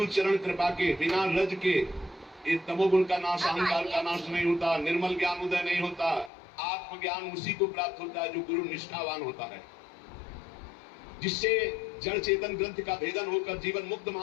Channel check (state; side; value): drops out; right; at 6.3 s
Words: चरण कृपा के, बिना रज के ये तमोगुण का नाश, अहंकार का नाश नहीं होता, निर्मल ज्ञान उदय नहीं होता। आत्मज्ञान उसी को प्राप्त होता है जो गुरु निष्ठावान होता है, जिससे जड़ चेतन ग्रंथ का भेदन होकर जीवन मुक्त